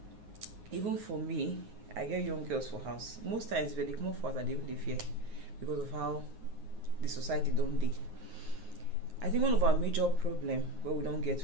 Even for me, I get young girls for house. Most times when they come for us, they even fear because of how the society don't dey. I think one of our major problem where we don't get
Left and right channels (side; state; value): left; late; 9.4 ms